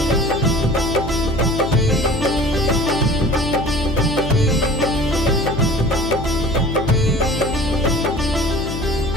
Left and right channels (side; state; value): left; noise; hum, 7 dB below the sound